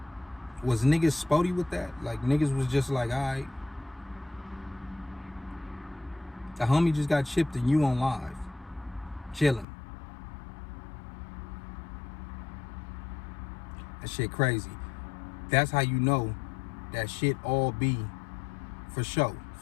Was niggas spotty with that? Like, niggas was just like, all right. The homie just got chipped and you on live. Chilling. That shit crazy. That's how you know that shit all be for show,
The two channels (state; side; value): drops out; right; at 9.7 s